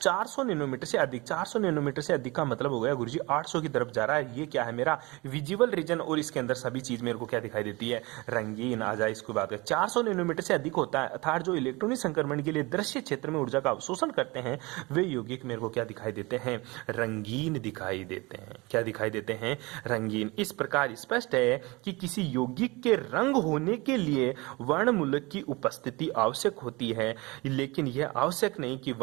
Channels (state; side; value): quieter; left; 24.3 dB